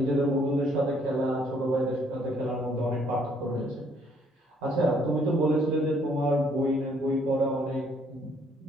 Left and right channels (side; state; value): both; normal; correlation 0.65